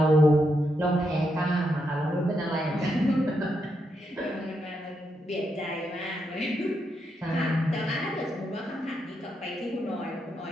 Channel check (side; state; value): both; normal; correlation 0.82